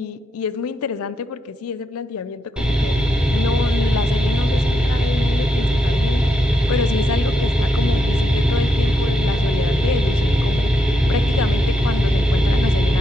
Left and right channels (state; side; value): normal; both; correlation 0.81